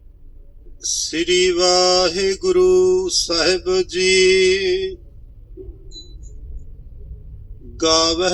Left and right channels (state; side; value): identical; both; correlation 1.00